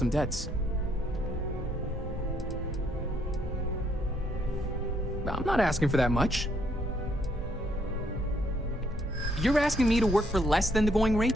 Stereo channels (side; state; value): both; normal; correlation 0.71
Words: debts. I'm not asking for that much. You're asking me to work for less than the going rate?